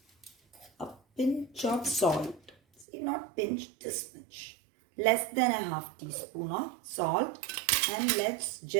a pinch of salt. See, not pinch, this much. Less than a half teaspoon of salt. And let's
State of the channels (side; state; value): left; drops out; at 2.9 s